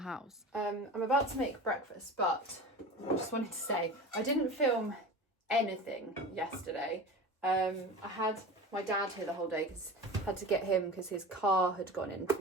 house. I'm about to make breakfast, but I just wanted to say, I didn't film anything yesterday. I had my dad here the whole day because I had to get him because his car had gone in to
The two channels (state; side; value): normal; both; correlation 0.33